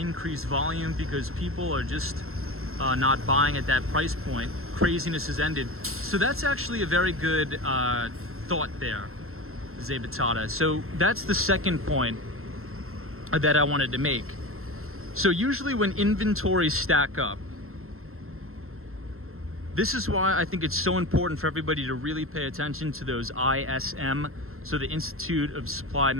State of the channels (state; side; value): late; left; 0.62 ms